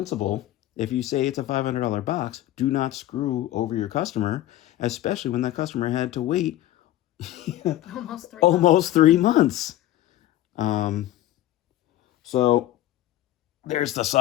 if you say it's a $500 box, do not screw over your customer, especially when that customer had to wait almost 3 months. So there's the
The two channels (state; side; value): quieter; right; 14.0 dB